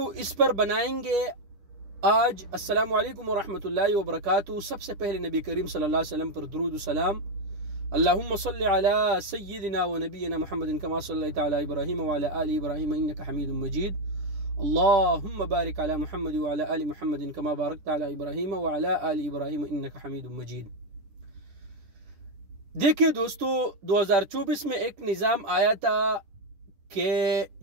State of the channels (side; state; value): left; late; 10 ms